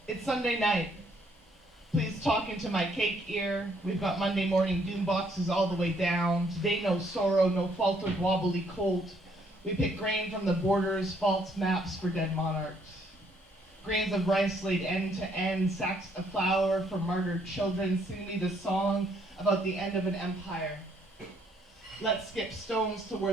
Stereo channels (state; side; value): normal; both; correlation 0.68